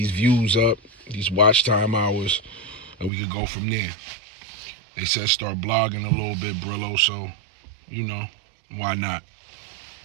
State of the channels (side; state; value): left; drops out; at 3.1 s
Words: views up, these watch time hours, and we could go from there. They said start blogging a little bit, Brillo, so, you know, why not?